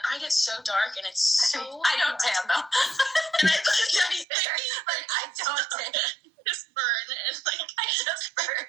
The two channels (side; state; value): left; drops out; at 4.2 s